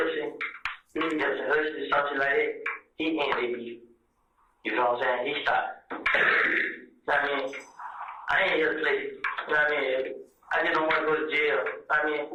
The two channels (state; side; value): identical; both; correlation 1.00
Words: Hussle, something like that. He ain't they beef. You know what I'm saying? He stopped. I mean, I ain't here to play. You know what I mean? I just don't want to go to jail. I mean,